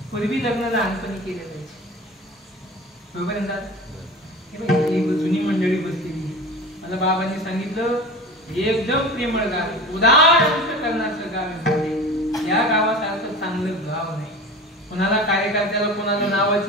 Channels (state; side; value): normal; both; correlation 0.34